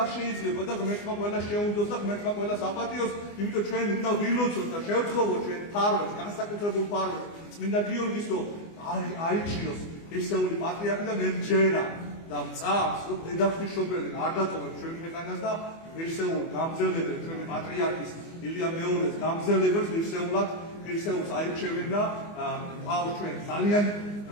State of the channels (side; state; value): right; late; 24 ms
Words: შეიძლება და ღმერთმა ყველას შეუნდოს და ღმერთმა ყველას აპატიოს, იმიტომ ჩვენ უნდა ვილოცოთ და შევთხოვოთ ჩვენ ფარვას, განსაკუთრებულ ფარვას, წმინდა გიორგის რომ აიჩიოს ერთეული პატრიარქი და მერჯერა და მწამს რომ დედაფშობელი არ დატოვებს ჩვენ ქვეყანას და ერთეულ გამძელებელ ჩვენი პატრიარქის ილია მეორეს გამძელებელს ერთეულს აირჩევენ და ყავს ჩვენ ძალიან